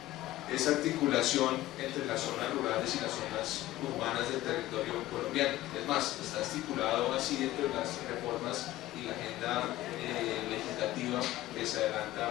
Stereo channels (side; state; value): right; quieter; 15.8 dB